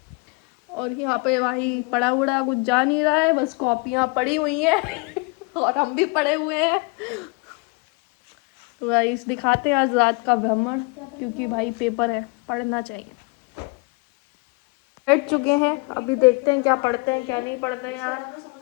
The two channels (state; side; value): quieter; right; 29.2 dB